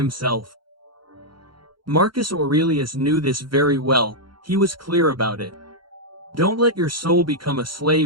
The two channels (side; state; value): left; late; 0.73 ms